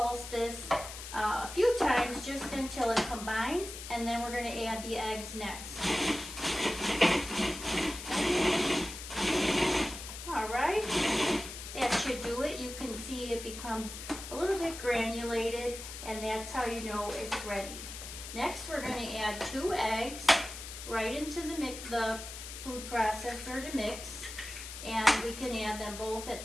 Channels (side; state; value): left; noise; hiss, 10 dB below the sound